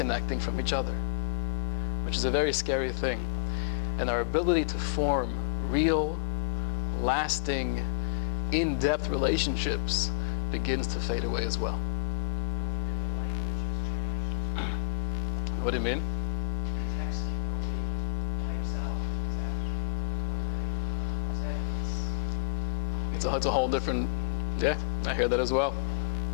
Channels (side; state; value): right; silent; digital silence